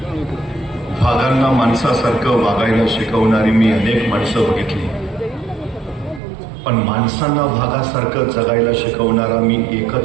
माणसासारखं वागायला शिकवणारी मी अनेक माणसं बघितली, पण माणसांना भागासारखं जगायला शिकवणारा मी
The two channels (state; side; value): drops out; left; at 6.2 s